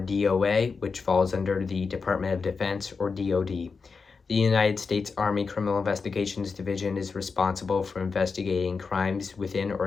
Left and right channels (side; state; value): right; quieter; 4.9 dB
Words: which falls under the Department of Defense, or DOD. The United States Army Criminal Investigations Division is responsible for investigating crimes within